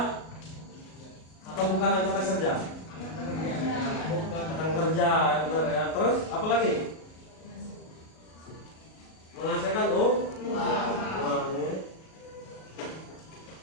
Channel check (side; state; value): right; late; 38 ms